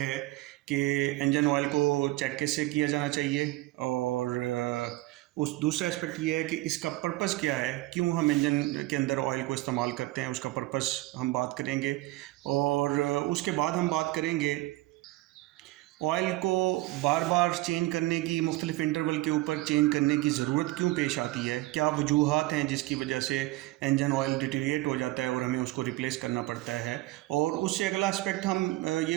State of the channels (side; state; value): left; quieter; 19.1 dB